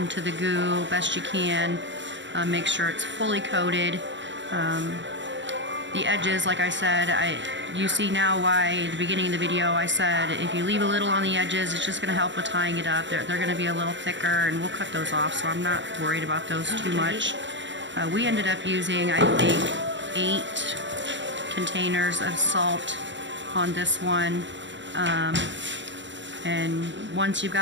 the goo best you can. Make sure it's fully coated. The edges, like I said, you see now why at the beginning of the video I said if you leave a little on the edges, it's just going to help with tying it up. They're going to be a little thicker, and we'll cut those off, so I'm not worried about those too much. We ended up using, I think, 8 containers of salt on this one. And once you've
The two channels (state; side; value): late; left; 0.54 ms